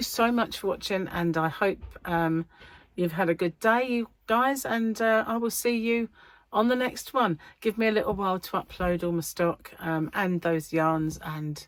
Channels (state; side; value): identical; both; correlation 1.00